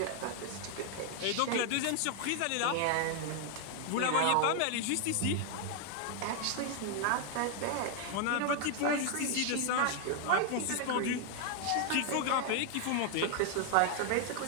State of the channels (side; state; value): both; different; correlation 0.00